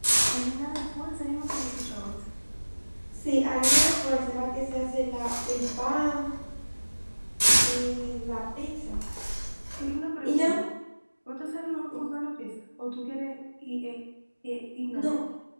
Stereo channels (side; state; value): both; inverted; correlation -1.00